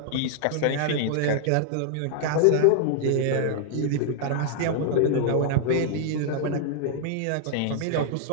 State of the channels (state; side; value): different; both; correlation -0.01